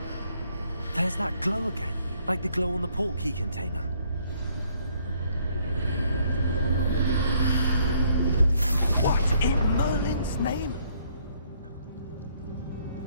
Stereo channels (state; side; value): inverted; both; correlation -0.67